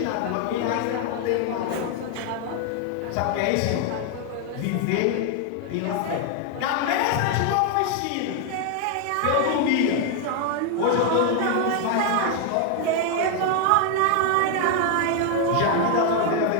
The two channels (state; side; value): different; both; correlation 0.00